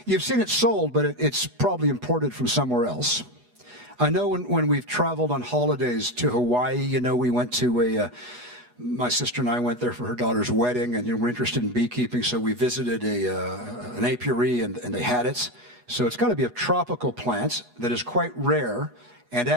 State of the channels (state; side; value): late; left; 8.2 ms